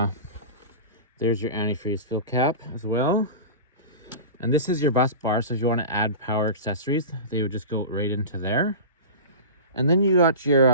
there's your antifreeze fill cap as well. And this is your bus bar, so if you want to add power accessories, they would just go right into there. And then you got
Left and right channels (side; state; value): both; inverted; correlation -0.30